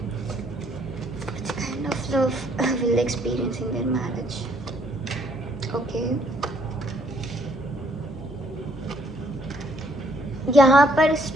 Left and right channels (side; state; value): both; normal; correlation 0.66